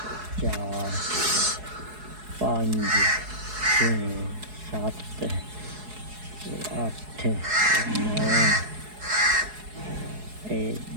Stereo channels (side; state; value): left; late; 4.7 ms